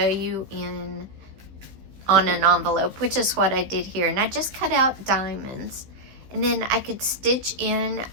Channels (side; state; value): left; late; 15 ms